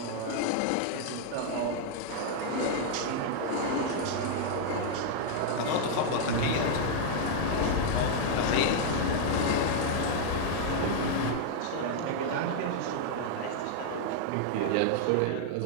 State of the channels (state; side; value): different; both; correlation 0.00